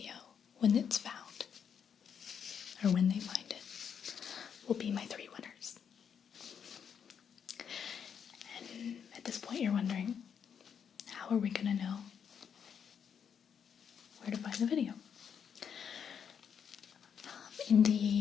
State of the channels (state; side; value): quieter; right; 7.6 dB